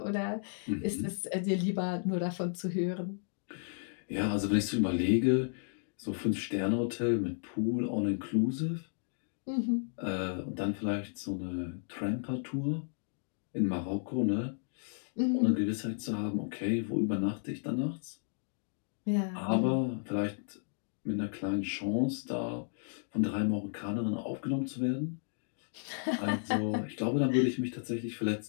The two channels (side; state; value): right; silent; digital silence